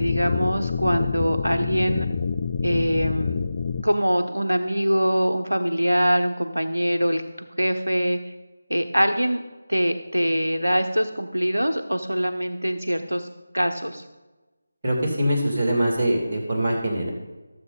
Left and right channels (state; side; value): inverted; both; correlation -0.95